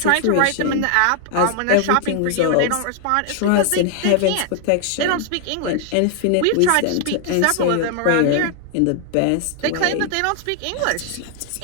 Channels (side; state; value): both; different; correlation 0.00